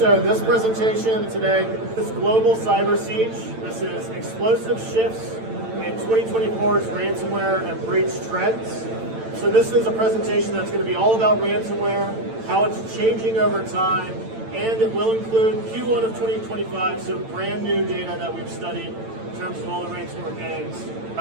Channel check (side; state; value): left; late; 8.9 ms